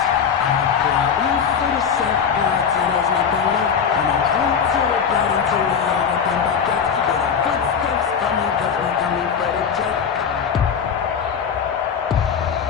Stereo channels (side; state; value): right; quieter; 7.0 dB